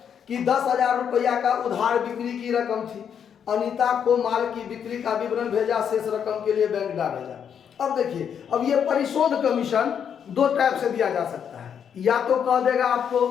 कि 10,000 रुपया का उधार बिक्री की रकम थी। अनीता को माल की बिक्री का विवरण भेजा, शेष रकम के लिए बैंक डाक भेजा। अब देखिए, अब ये परिशोध कमीशन 2 टाइप से दिया जा सकता है। या तो कह देगा आपको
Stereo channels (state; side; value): quieter; right; 8.0 dB